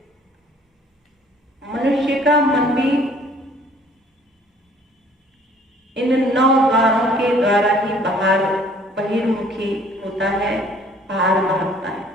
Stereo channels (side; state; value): both; normal; correlation 0.56